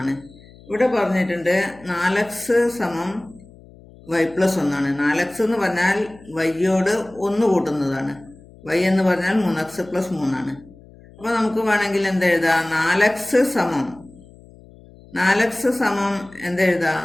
ആണ്. ഇവിടെ പറഞ്ഞിട്ടുണ്ട് 4x സമം y+1 ആണ്. 4x എന്ന് പറഞ്ഞാൽ വൈയോട് 1 കൂട്ടുന്നതാണ്. y എന്ന് പറഞ്ഞാൽ 3x+3 ആണ്. അപ്പോൾ നമുക്ക് വേണമെങ്കിൽ എന്തെഴുതാം? 4x സമം എന്തെഴുതാം?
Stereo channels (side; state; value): left; noise; hum, 23 dB below the sound